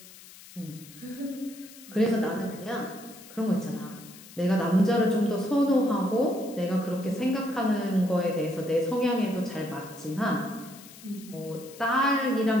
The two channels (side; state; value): left; noise; hiss, 19 dB below the sound